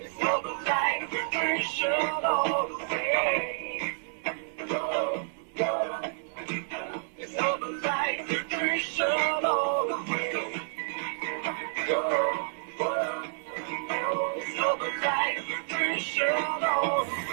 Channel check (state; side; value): silent; left; digital silence